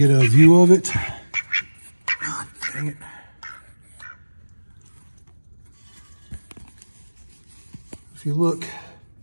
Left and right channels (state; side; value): inverted; both; correlation -1.00